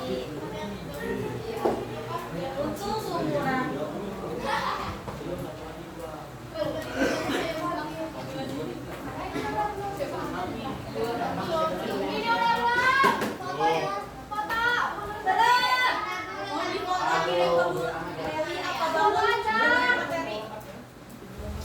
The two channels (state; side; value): identical; both; correlation 1.00